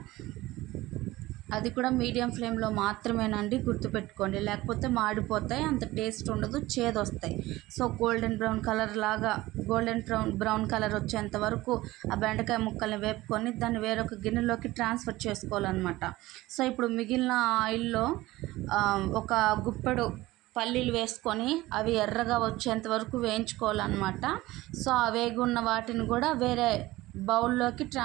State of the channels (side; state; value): left; quieter; 18.3 dB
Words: అది కూడా మీడియం ఫ్లేమ్లో మాత్రమేనండి, గుర్తుపెట్టుకోండి, లేకపోతే మాడిపోతాయి, అంత టేస్ట్ ఉండదు, చేదు వస్తాయి. సో గోల్డెన్ బ్రౌన్ కలర్ వచ్చేంత వరకు ఆ బెండకాయ ముక్కల్ని వేపుకొని దాన్ని వేరొక గిన్నెలోకి ట్రాన్స్ఫర్ చేసుకోవాలన్నమాట. సో ఇప్పుడు మిగిలిన ఆయిల్లో ఒక గుప్పెడు పల్లీలు వేసుకొని అవి ఎర్రగా వచ్చేంత వరకు వేయించుకోవాలన్నమాట. సో ఆ వేగున్న వాటిని కూడా వేరే బౌల్లోకి